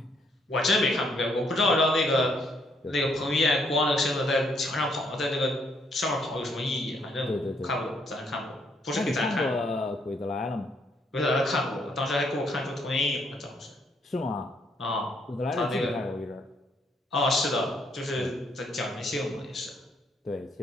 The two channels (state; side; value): normal; both; correlation 0.71